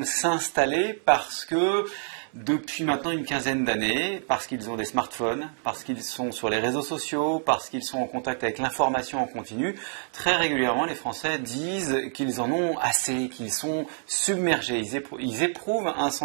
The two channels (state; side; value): silent; left; 60 dB below the other